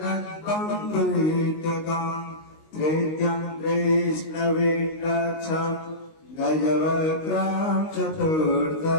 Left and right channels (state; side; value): late; right; 19 ms